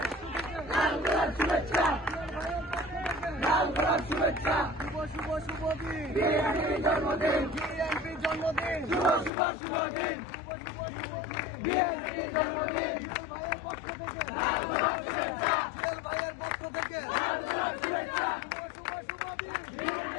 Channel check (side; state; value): right; drops out; at 9.3 s